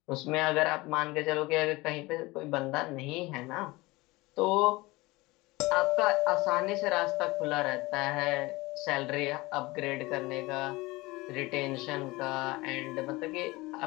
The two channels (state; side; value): quieter; right; 21.8 dB